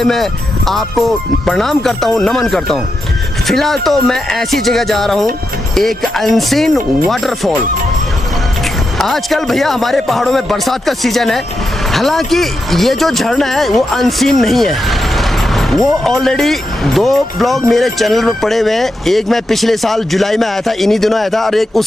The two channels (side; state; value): both; normal; correlation 0.87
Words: मैं आपको प्रणाम करता हूँ, नमन करता हूँ। फिलहाल तो मैं ऐसी जगह जा रहा हूँ, एक अनसीन वाटरफॉल। आजकल भैया हमारे पहाड़ों में बरसात का सीजन है, हालांकि ये जो झरना है वो अनसीन नहीं है। वो ऑलरेडी 2 ब्लॉग मेरे चैनल पर पड़े हुए हैं। एक मैं पिछले साल जुलाई में आया था, इन्हीं दिनों आया था, और एक